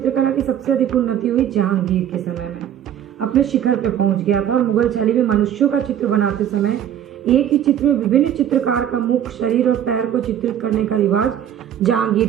की सबसे अधिक उन्नति हुई जहांगीर के समय में। अपने शिखर पे पहुंच गया था, और मुगल शैली में मनुष्यों का चित्र बनाते समय एक ही चित्र में विभिन्न चित्रकार का मुख, शरीर और पैर को चित्रित करने का रिवाज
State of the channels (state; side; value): quieter; left; 10.1 dB